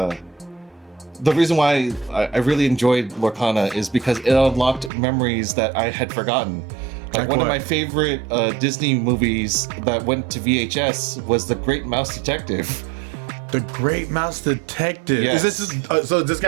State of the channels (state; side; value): drops out; left; at 4.9 s